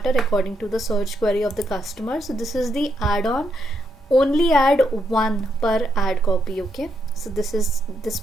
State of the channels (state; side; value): normal; both; correlation 0.78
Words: according to the search query of the customer. So this is the add-on. Only add one per ad copy. Okay, so this